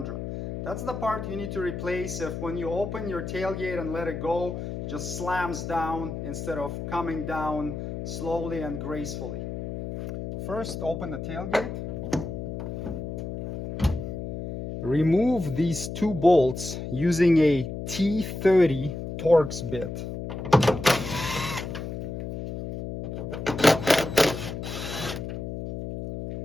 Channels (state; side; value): noise; left; hum, 6 dB below the sound